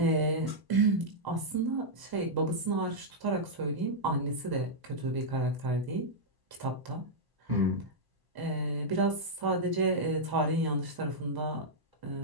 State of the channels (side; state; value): left; late; 1.0 ms